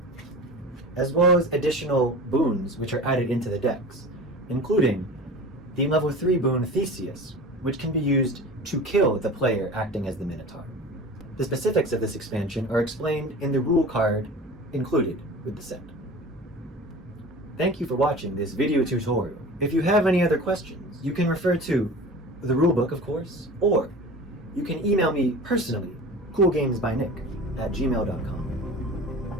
as well as additional boons which are added into the decks, including the level 3 boon Theseus, which can be used to kill the player acting as the Minotaur. The specifics of this expansion are explained in the rule card included with the set. Thank you for watching this video tutorial. If you have any other questions, you can refer to the rulebook, of course, or you can email me personally,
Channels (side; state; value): both; normal; correlation 0.37